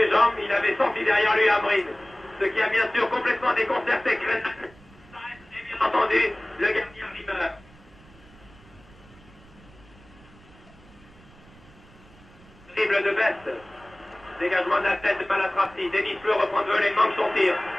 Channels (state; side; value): noise; right; rumble, 25 dB below the sound